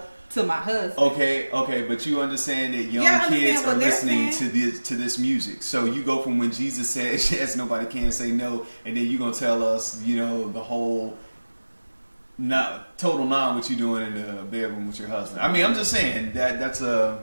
to my husband. Okay, but you understand that young kids are listening to this music. So you go from when Jesus says yes, nobody can say no, and then you're gonna tell us, the whole total what you doing in the bedroom with your husband. I mean, I'm just saying that's a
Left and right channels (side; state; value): both; inverted; correlation -1.00